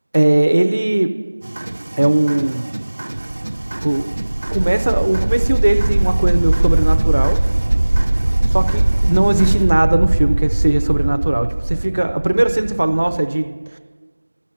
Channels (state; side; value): inverted; both; correlation -1.00